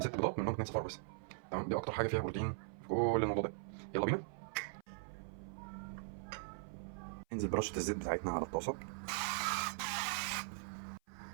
6 بيضات منهم 2 صفار بس. تمام، دي اكتر حاجه فيها بروتين في كل الموضوع ده. يلا بينا. ننزل برشه الزيت بتاعتنا على الطاسه.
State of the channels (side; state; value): left; silent; 51 dB below the other